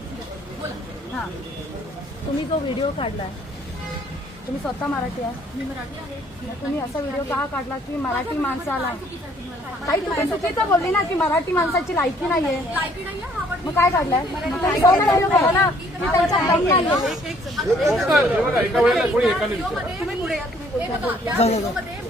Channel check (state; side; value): normal; both; correlation 0.62